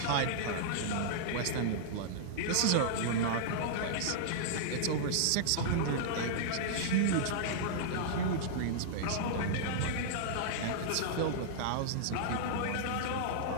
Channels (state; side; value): different; both; correlation -0.02